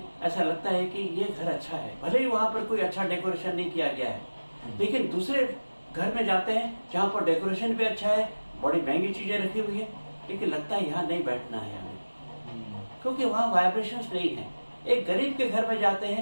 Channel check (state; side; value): inverted; both; correlation -1.00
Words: ऐसा लगता है कि ये घर अच्छा है, भले ही वहां पर कोई अच्छा डेकोरेशन नहीं किया गया है, लेकिन दूसरे घर में जाते हैं जहाँ पर डेकोरेशन भी अच्छा है, बड़ी महंगी चीजें रखी हुई है, लेकिन लगता है यहाँ नहीं बैठना है हमें, क्योंकि वहाँ वाइब्रेशंस नहीं है। एक गरीब के घर में जाते